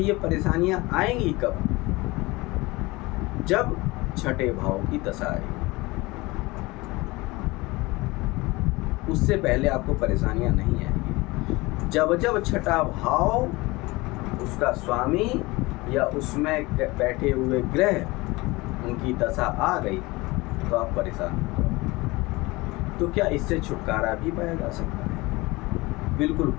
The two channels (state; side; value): quieter; right; 22.3 dB